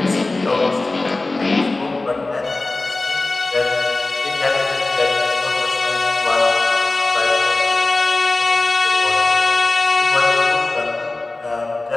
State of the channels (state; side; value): quieter; right; 3.1 dB